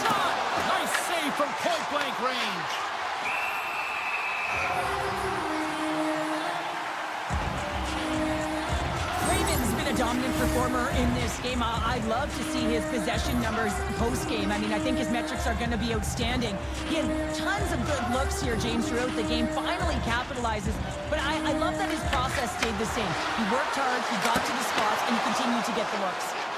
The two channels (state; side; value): identical; both; correlation 1.00